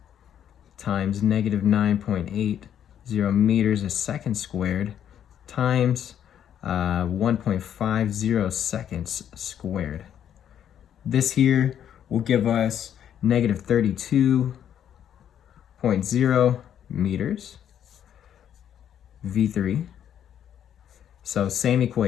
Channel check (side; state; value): right; quieter; 9.7 dB